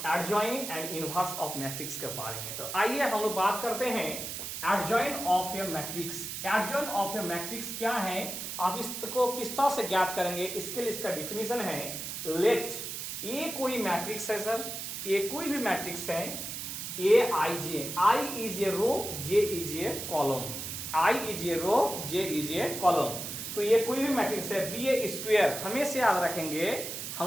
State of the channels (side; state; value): right; noise; hiss, 6 dB below the sound